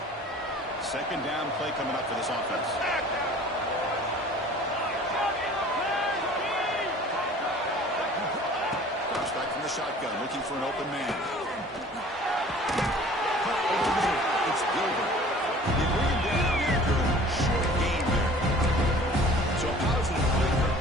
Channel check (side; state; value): both; normal; correlation 0.48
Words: Second down play coming up for this offense. Drops back from the shotgun, looking for an open man. It's Gilbert. They bring him down after a short game there. So a positive play